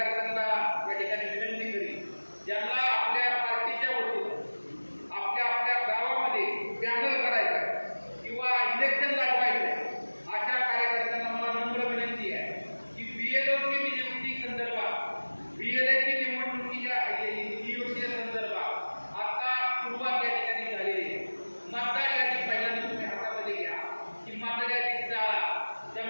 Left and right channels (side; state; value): both; inverted; correlation -1.00